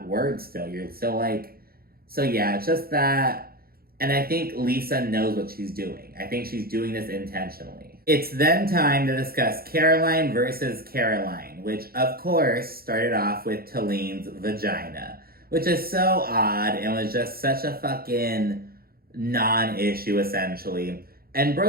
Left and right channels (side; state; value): left; late; 0.44 ms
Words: word still. You're still like, so yeah, it's just that. And I think Lisa knows what she's doing. I think she's doing this intentionally. It's then time to discuss Caroline versus Caroline, which of course started off with Talin's vagina, which is so odd and was just such a fucking non-issue essentially. And